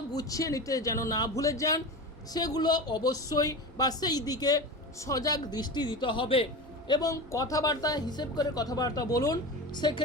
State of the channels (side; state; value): both; normal; correlation 0.27